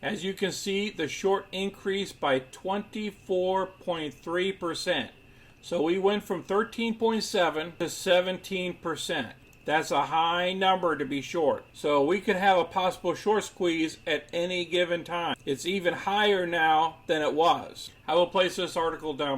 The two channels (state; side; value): identical; both; correlation 1.00